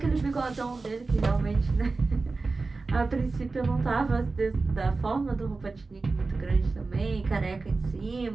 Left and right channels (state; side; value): quieter; left; 3.8 dB